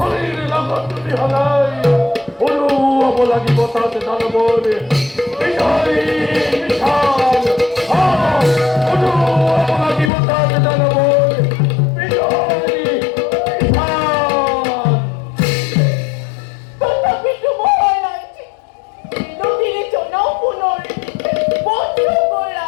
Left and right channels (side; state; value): right; drops out; at 10.1 s